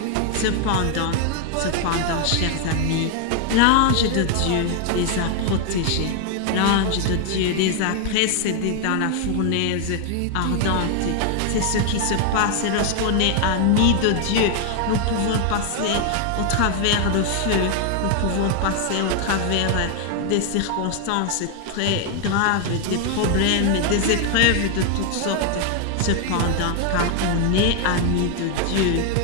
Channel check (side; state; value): both; different; correlation 0.00